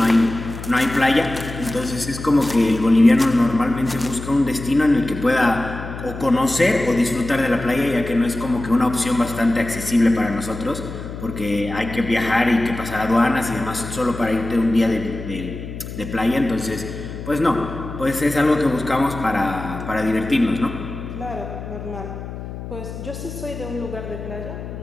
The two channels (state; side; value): noise; left; hum, 10 dB below the sound